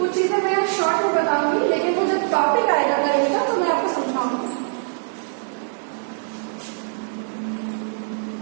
चीजें मैं शॉर्ट में बताऊंगी, लेकिन वो जब टॉपिक आएगा करेगा तो मैं आपको समझाऊंगी।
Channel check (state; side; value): silent; left; digital silence